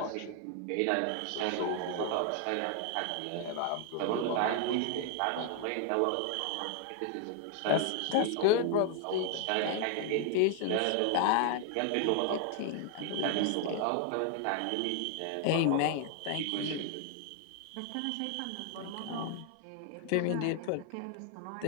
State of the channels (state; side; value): different; both; correlation 0.00